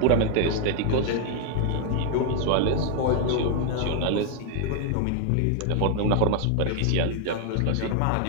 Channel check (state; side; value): different; both; correlation 0.00